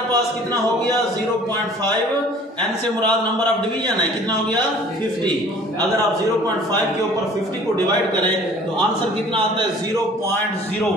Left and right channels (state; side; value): normal; both; correlation 0.50